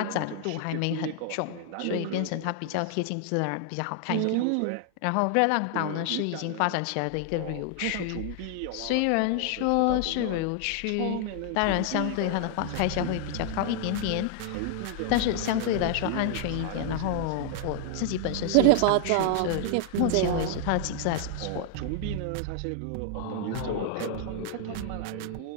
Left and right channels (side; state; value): both; different; correlation 0.00